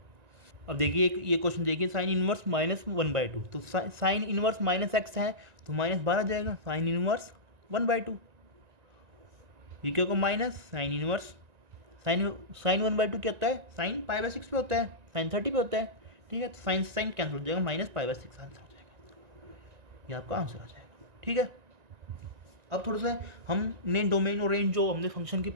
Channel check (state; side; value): late; left; 1.9 ms